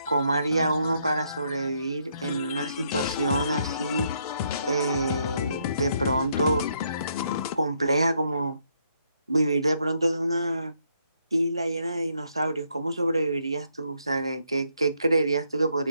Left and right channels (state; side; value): inverted; both; correlation -0.74